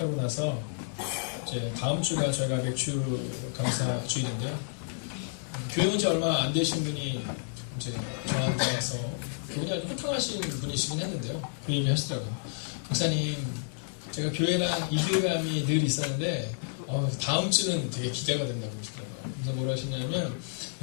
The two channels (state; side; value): silent; right; digital silence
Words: 나서 이제 다음 주가 저희가 맥주 감사 주일인데요. 교회 온 지 얼마 안 되신 분이 이제 저한테 와서 그분이 아주 호탕하신 분이시긴 했는데요. 그 얘기 하시더라고요. 목사님, 제가 교회랑 이질감이 늘 있었는데 다음 주는 되게 기대가 된다고 그러시더라고요. 그래서 뭐라 하시냐면,